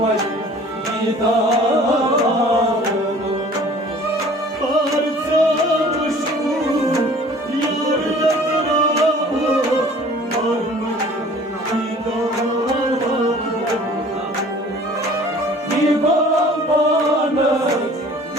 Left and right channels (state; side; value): normal; both; correlation 0.49